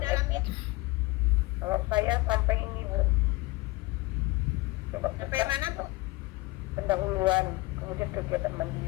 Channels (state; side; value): quieter; right; 21.7 dB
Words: LMS. itu Kalau saya sampai ini Bu. Coba sampai buka mana Bu? pendahuluan, kemudian kegiatan